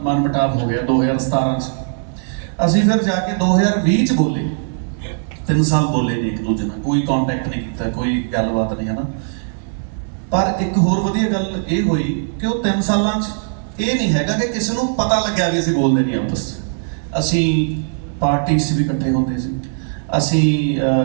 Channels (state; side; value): silent; left; 67 dB below the other